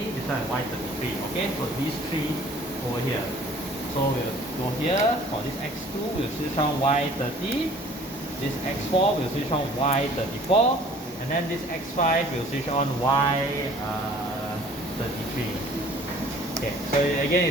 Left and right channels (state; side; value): normal; both; correlation 0.51